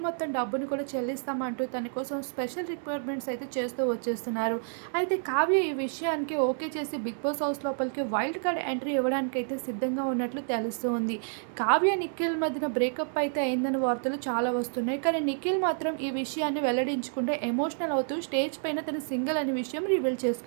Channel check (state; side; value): silent; left; digital silence